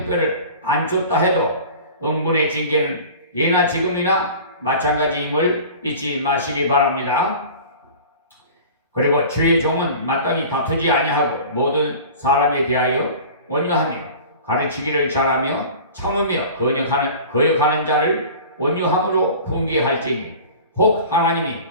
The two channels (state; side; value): inverted; both; correlation -0.39